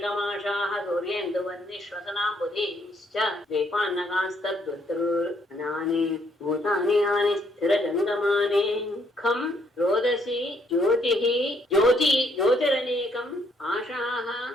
ಸೂರ್ಯೇಂದು ವಂದಿ ಶ್ವಸನಾಂಬುಧಿ ದ್ವೀಪಾನ್ನಗಾಸ್ತದ್ವೃತೃನಾನಿ ಭೂತಾನಿ ಆನಿ ಸ್ಥಿರ ಜಂಗಮಾನಿ ಖಂ ರೋದಸಿ ಜ್ಯೋತಿರನೇಕಂ ಆಶಾಹ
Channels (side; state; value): both; normal; correlation 0.69